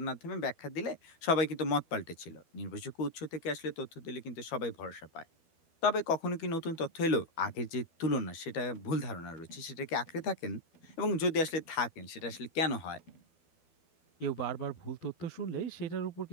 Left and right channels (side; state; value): right; late; 12 ms